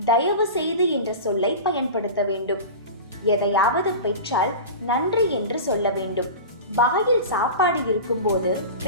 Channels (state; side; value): inverted; both; correlation -0.30